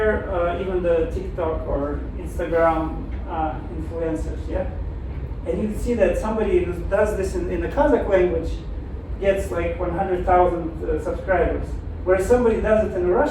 even the TikTok or Instagram influencers, and you can see that somebody who does this in the Kazakh language gets like 100,000 subscribers, whereas somebody does it in the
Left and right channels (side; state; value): both; identical; correlation 1.00